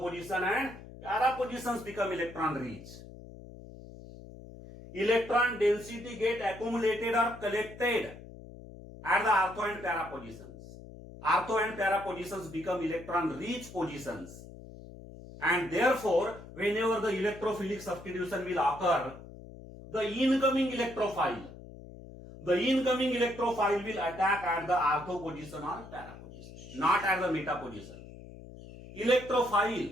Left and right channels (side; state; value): left; noise; hum, 16 dB below the sound